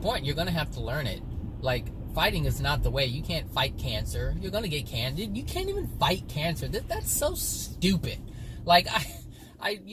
you're going to have to learn it. Like, fighting is not the way. You can't fight cancer. You're going to get cancer. You can't even fight cancer. That's so stupid. Like, I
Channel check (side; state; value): both; identical; correlation 1.00